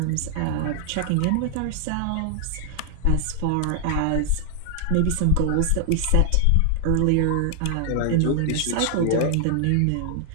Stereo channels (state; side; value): different; both; correlation 0.00